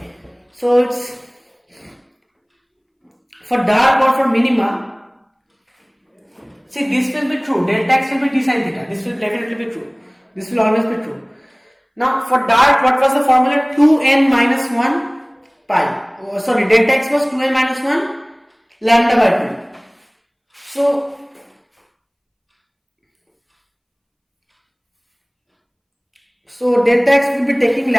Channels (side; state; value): both; identical; correlation 1.00